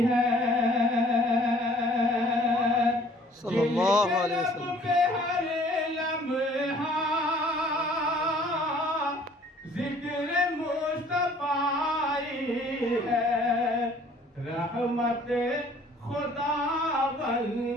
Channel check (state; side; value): normal; both; correlation 0.55